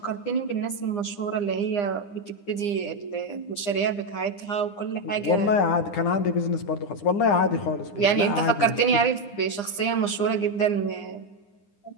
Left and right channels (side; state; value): right; late; 9.9 ms